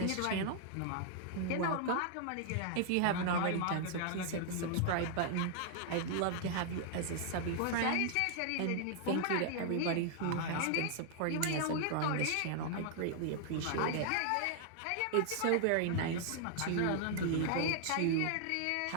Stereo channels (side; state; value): both; different; correlation 0.00